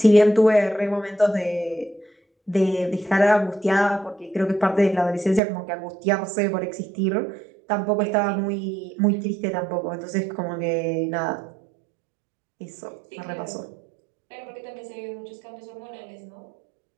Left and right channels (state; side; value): drops out; left; at 5.4 s